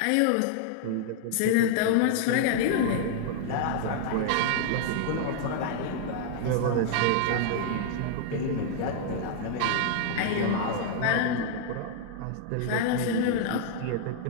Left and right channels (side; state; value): both; different; correlation 0.00